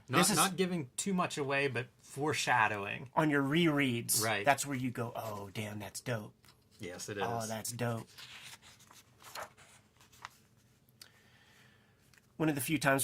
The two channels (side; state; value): both; identical; correlation 1.00